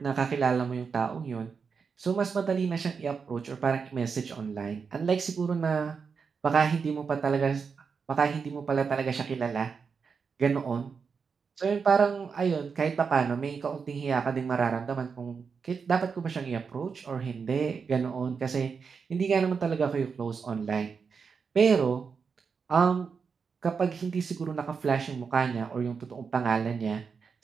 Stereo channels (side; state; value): left; quieter; 5.7 dB